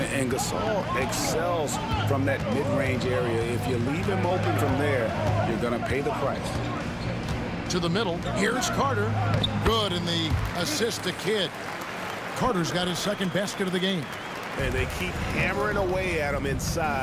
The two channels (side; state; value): both; identical; correlation 1.00